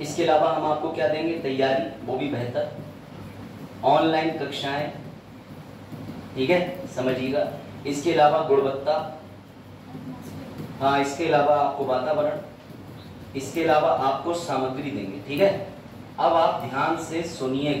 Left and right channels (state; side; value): identical; both; correlation 1.00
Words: इसके अलावा हम आपको क्या देंगे, तैयारी, वो भी बेहतर, ऑनलाइन कक्षाएं, ठीक है, समझिएगा। इसके अलावा गुणवत्ता, हाँ, इसके अलावा आपको वातावरण, इसके अलावा आपको सामग्री देंगे, ठीक है। अब आप ध्यान से